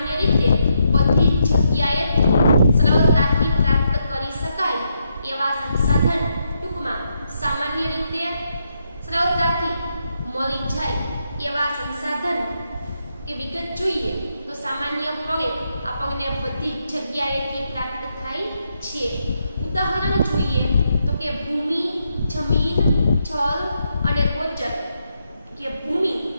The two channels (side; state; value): both; inverted; correlation -0.80